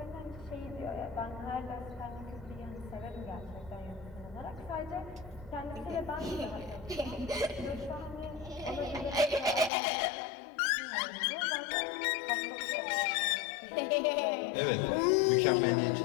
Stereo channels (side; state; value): right; drops out; at 9.7 s